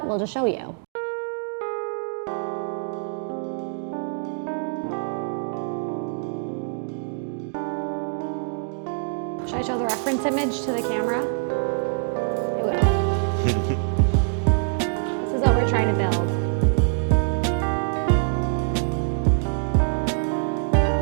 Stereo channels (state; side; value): silent; left; 62 dB below the other